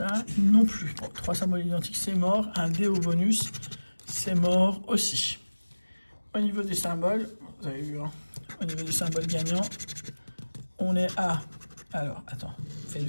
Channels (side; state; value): both; inverted; correlation -1.00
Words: non plus. Bon, 3 symboles identiques, c'est mort. Un dé au bonus, c'est mort aussi. Au niveau des symboles, vous avez vu, hein, au niveau des symboles gagnants, on est à... Alors, attends,